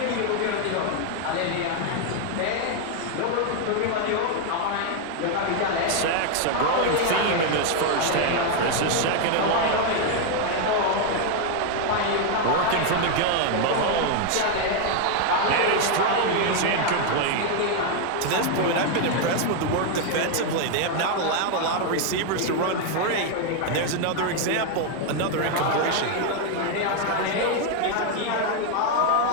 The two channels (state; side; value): different; both; correlation 0.01